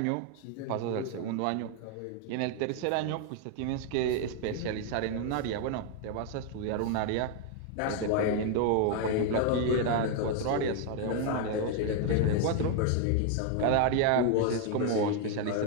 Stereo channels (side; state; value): both; different; correlation 0.00